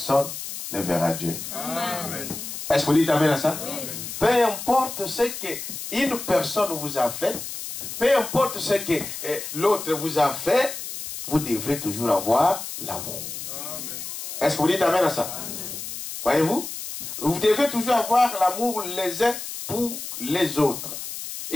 ne verra Dieu. Amen. Est-ce que vous dites amen à ça? Amen. Peu importe ce qu'une personne vous a fait, peu importe ce que l'autre vous a fait, vous devrez toujours avoir l'amour. Est-ce que vous dites amen à ça? Voyez-vous? Vous devez toujours avoir l'amour les uns pour les autres.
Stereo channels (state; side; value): noise; left; hiss, 8 dB below the sound